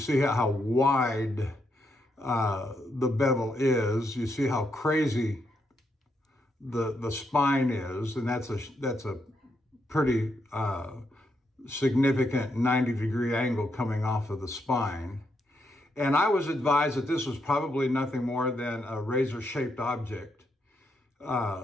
how wide the bevel is. You see how crazy the spine is, and that's a pretty significant 90-degree angle coming off of the spine. And I was advised that this was probably nothing more than a razor-shaped object.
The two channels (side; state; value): both; normal; correlation 0.80